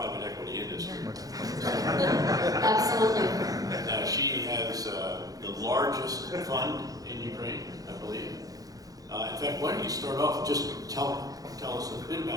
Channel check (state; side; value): late; left; 0.17 ms